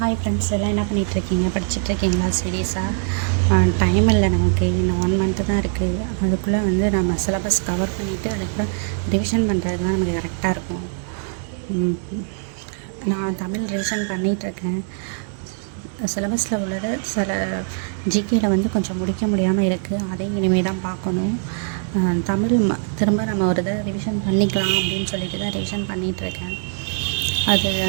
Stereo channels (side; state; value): left; silent; digital silence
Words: Hi friends, எல்லாம் என்ன பண்ணிகிட்ருக்கீங்க? படிச்சுட்ருக்கீங்களா? சீரியஸாக டைம் இல்லை நமக்கு. இன்னும் 1 மந்த்து தான் இருக்குது. அதுக்குள்ளே வந்து நம்ம சிலபஸ் கவர் பண்ணிவிட்டு அதுக்கப்புறம் ரிவிஷன் பண்ணுறதுக்கு தான் நமக்கு கரெக்டாக இருக்கும். நான் தமிழ் ரிவிஷன் பண்ணிகிட்ருக்கேன். சிலபஸில் உள்ளது சில ஜிகேயில் வந்து கொஞ்சம் முடிக்க முடியாமல் இருக்குது. அதையும் இனிமேல் தான் பார்க்கணும். தமிழ் திரும்ப நம்ம ஒரு இதை ரிவிஷன் பண்ணிக்கலாம் அப்படின்னு சொல்லிட்டு தான் ரிவிஷன் பண்ணிகிட்ருக்கேன். அது